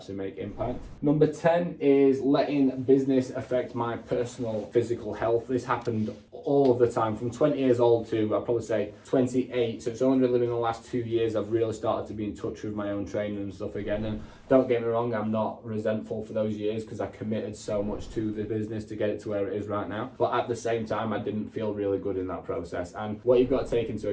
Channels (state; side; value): identical; both; correlation 1.00